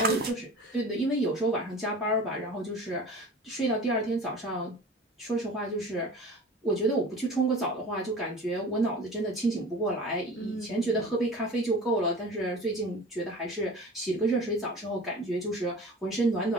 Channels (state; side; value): normal; both; correlation 0.38